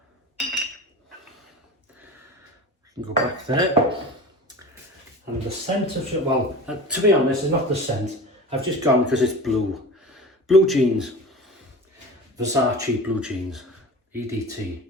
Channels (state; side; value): normal; both; correlation 0.34